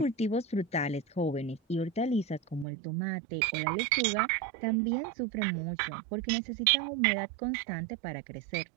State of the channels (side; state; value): left; drops out; at 2.7 s